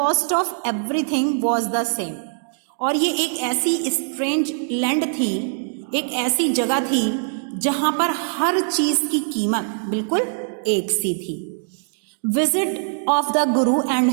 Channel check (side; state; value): left; silent; digital silence